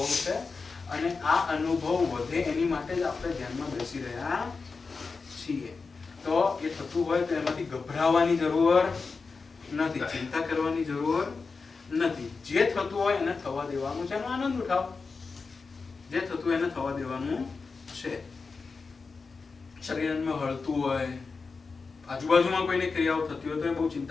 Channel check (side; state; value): right; quieter; 4.5 dB